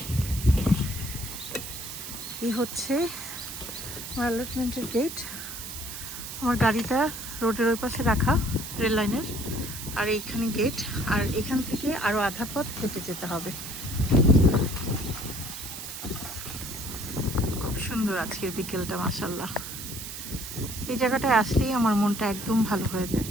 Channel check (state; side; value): noise; right; hiss, 9 dB below the sound